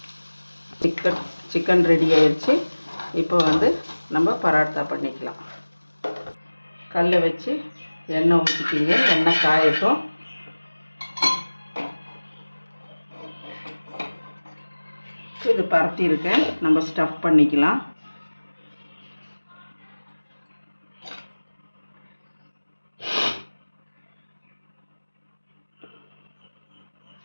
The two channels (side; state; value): both; inverted; correlation -1.00